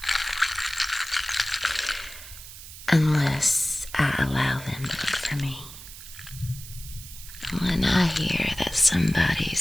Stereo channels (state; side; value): noise; right; hiss, 14 dB below the sound